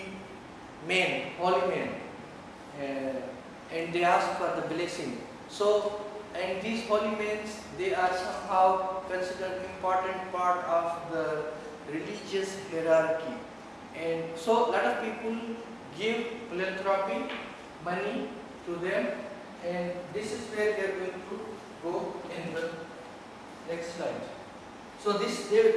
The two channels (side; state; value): both; identical; correlation 1.00